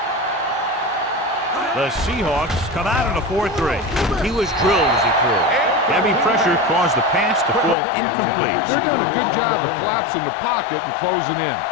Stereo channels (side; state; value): right; drops out; at 7.8 s